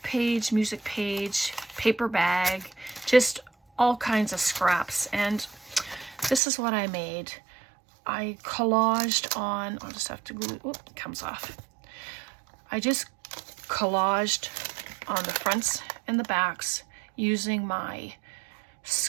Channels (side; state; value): left; drops out; at 6.4 s